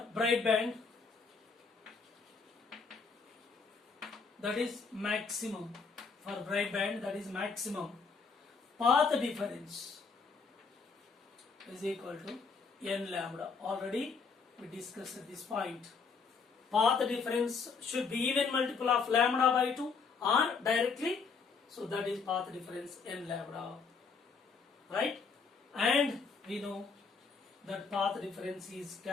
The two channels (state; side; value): quieter; right; 5.1 dB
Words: bright band, that is maximum. For bright band, that is maximum. Path difference is equal to n lambda. Already we discussed at this point. Path difference should be even multiple of lambda by 2 or directly. So that is path difference n lambda. Right? And we know that path difference is